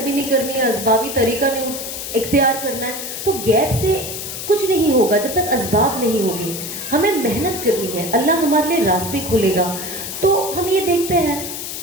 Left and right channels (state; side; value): noise; left; hiss, 7 dB below the sound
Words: भी नहीं करनी है, असबाबी तरीका नहीं इख्तियार करना है, तो गैप से कुछ नहीं होगा जब तक असबाब नहीं होगी। हमें मेहनत करनी है, अल्लाह हमारे लिए रास्ते खोलेगा। तो हम ये देखते हैं